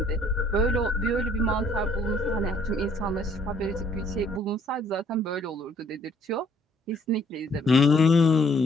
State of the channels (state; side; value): normal; both; correlation 0.63